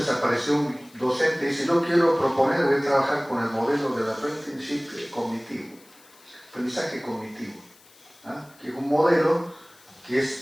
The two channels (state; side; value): noise; left; hiss, 26 dB below the sound